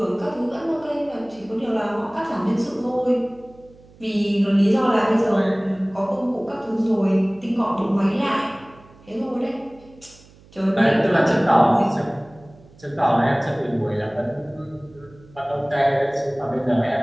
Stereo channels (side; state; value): right; noise; hum, 25 dB below the sound